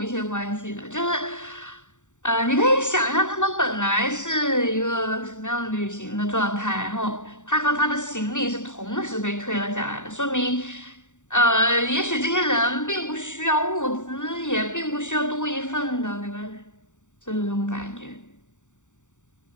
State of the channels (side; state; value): right; late; 0.85 ms